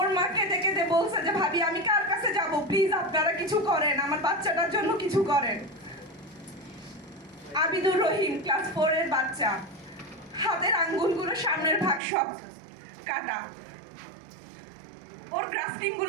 মাকে ডেকে বলছে যে ভাবি আমি কার কাছে যাব, প্লিজ আপনারা কিছু করেন, আমার বাচ্চাটার জন্য কিছু করেন। আবিদুর রহিম ক্লাস 4 এর বাচ্চা, হাতের আঙ্গুলগুলো সামনের ভাগ সব কাটা, ওর গ্রাফটিং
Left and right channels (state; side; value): drops out; left; at 12.0 s